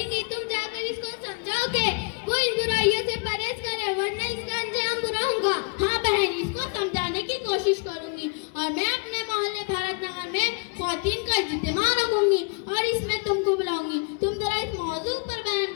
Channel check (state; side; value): quieter; right; 35.0 dB